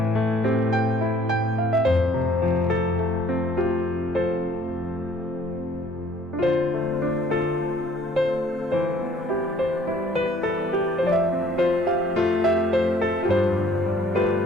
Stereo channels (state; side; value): normal; both; correlation 0.58